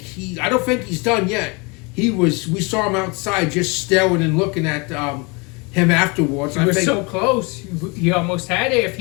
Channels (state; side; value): quieter; right; 29.3 dB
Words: think he's done yet. We saw him outside just staring and looking at him afterwards. He was so close. He almost had it. If